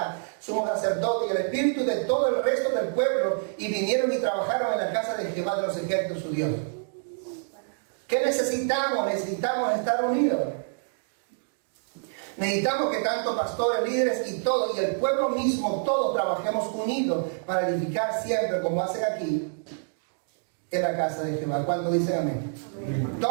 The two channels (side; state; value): left; silent; digital silence